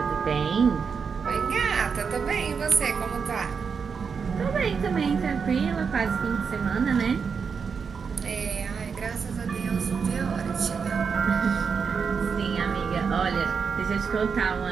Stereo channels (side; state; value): left; quieter; 5.9 dB